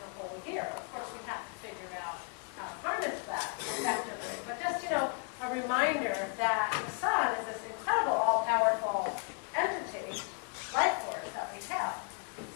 a whole year. Of course, we have to figure out how to harness that effectively. But just, a reminder that the sun is this incredible, all-powerful entity, life force that we have.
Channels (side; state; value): right; quieter; 38.0 dB